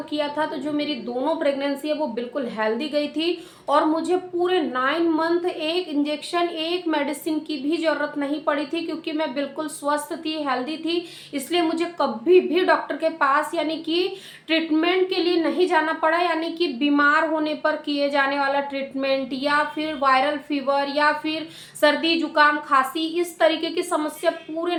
किया था। तो जो मेरी दोनों प्रेगनेंसी है वो बिल्कुल हेल्दी गई थी और मुझे पूरे 9 मंथ एक इंजेक्शन एक मेडिसिन की भी जरूरत नहीं पड़ी थी, क्योंकि मैं बिल्कुल स्वस्थ थी, हेल्दी थी। इसलिए मुझे कभी भी डॉक्टर के पास यानी कि ट्रीटमेंट के लिए नहीं जाना पड़ा, यानी कि बीमार होने पर किए जाने वाला ट्रीटमेंट या फिर वायरल फीवर या फिर सर्दी जुकाम खांसी इस तरीके की समस्या पूरे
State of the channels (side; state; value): both; identical; correlation 1.00